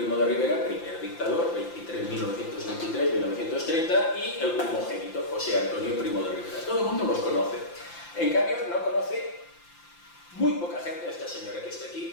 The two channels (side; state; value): right; late; 5.8 ms